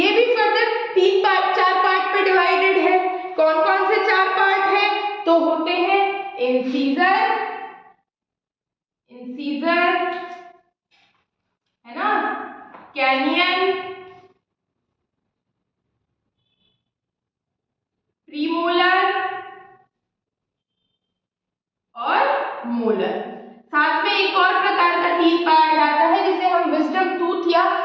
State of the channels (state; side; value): identical; both; correlation 1.00